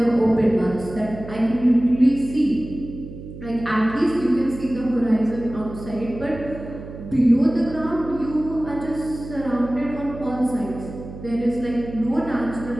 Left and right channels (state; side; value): noise; right; hum, 13 dB below the sound